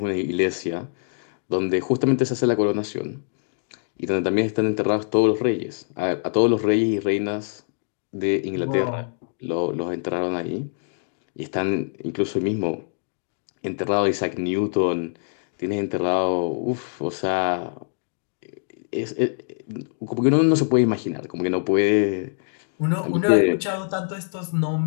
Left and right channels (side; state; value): right; silent; digital silence